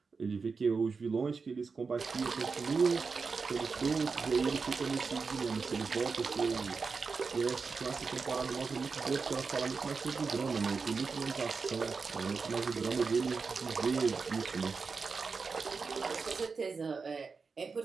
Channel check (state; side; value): quieter; left; 4.8 dB